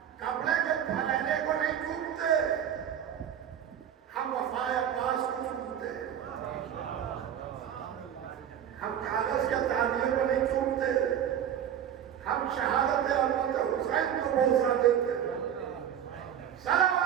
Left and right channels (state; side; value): quieter; left; 9.5 dB